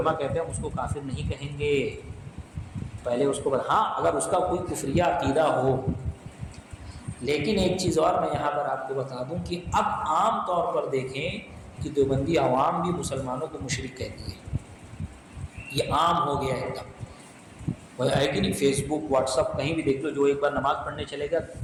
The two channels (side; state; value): both; identical; correlation 1.00